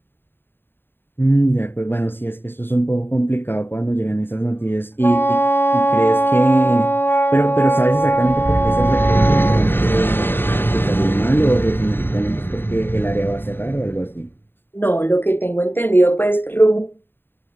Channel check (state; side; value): late; right; 0.10 ms